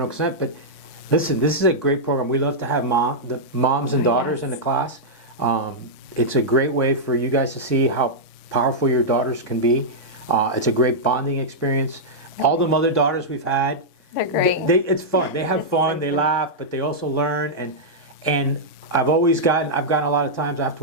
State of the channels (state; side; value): late; right; 3.5 ms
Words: consent. But listen, this is a great program. We love to have the moms and daughters in the class. It's a great way for you guys to see how powerful your daughters can be. It's a great bonding experience. All the mother-daughters we've had, They're great. it's fun. They have fun, they laugh, but they also learn. And I've gotten a lot of times